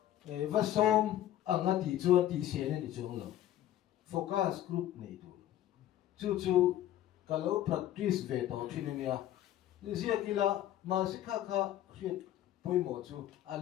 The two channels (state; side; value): quieter; right; 12.7 dB